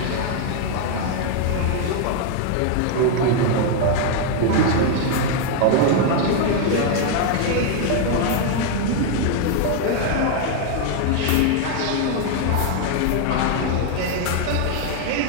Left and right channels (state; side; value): different; both; correlation 0.00